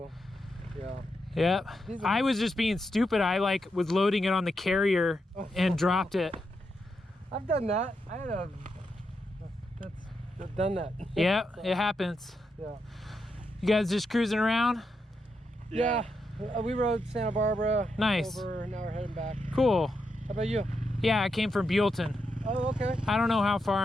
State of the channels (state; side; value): normal; both; correlation 0.84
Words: Yeah. Yep. I was just being stupid. I like was loading it on the carrier and dropped it. I've done that. I had a I've done that. Yeah, it happens. Yeah. You guys just cruising around? Yeah. We rode Santa Barbara. Nice. Over, now we're heading back. Cool. How about you? Yeah, I came from Buellton. Oh, okay. I don't know how far